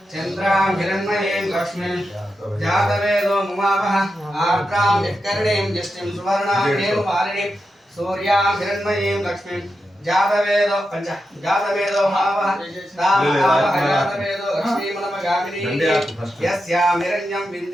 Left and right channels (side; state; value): both; normal; correlation 0.88